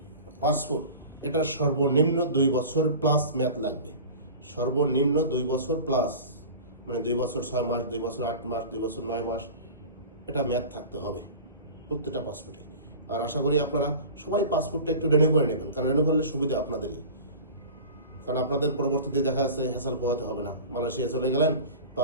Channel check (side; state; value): both; inverted; correlation -0.36